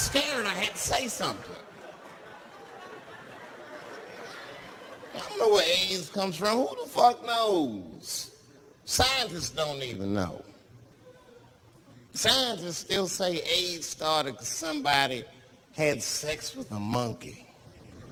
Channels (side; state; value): both; identical; correlation 1.00